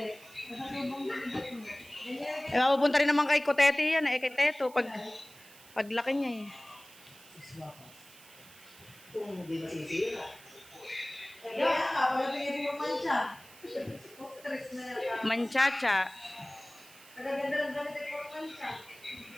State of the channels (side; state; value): right; noise; hiss, 21 dB below the sound